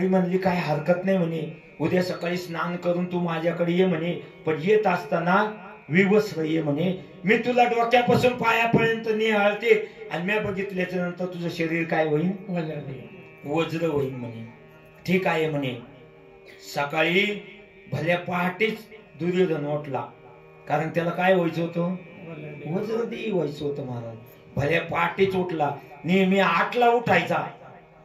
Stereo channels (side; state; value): both; identical; correlation 1.00